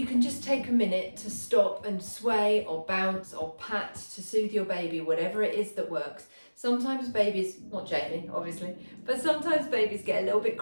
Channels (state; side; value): inverted; both; correlation -1.00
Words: can just take a minute to stop and sway or bounce or pat to soothe your baby, whatever it is that works. Sometimes babies, not Jamie obviously, but sometimes babies get a little bit